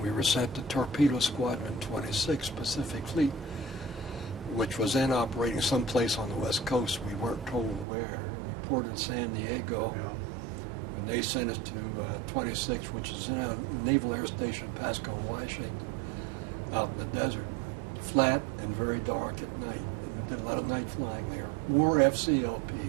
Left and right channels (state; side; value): drops out; left; at 7.9 s